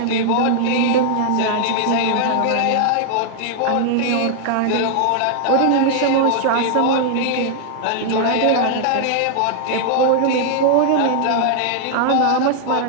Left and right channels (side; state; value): both; different; correlation 0.00